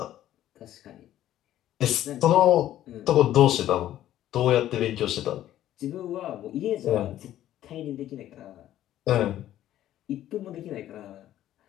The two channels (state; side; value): quieter; right; 12.7 dB